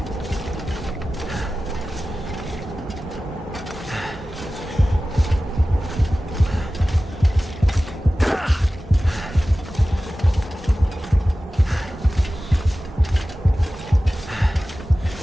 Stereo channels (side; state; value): both; normal; correlation 0.96